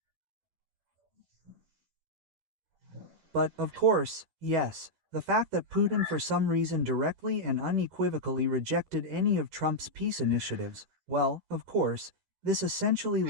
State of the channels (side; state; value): left; late; 13 ms